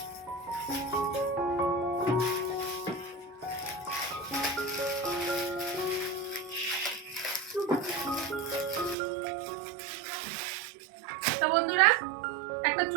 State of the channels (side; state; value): left; drops out; at 9.0 s